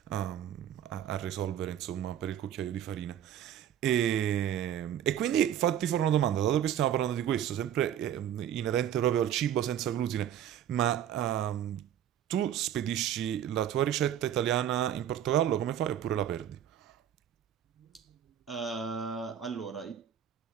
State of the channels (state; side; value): quieter; left; 10.4 dB